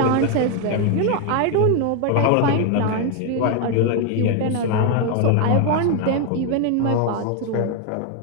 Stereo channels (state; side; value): different; both; correlation 0.01